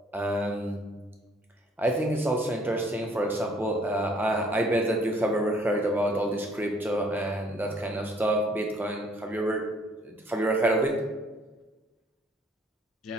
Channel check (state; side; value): normal; both; correlation 0.60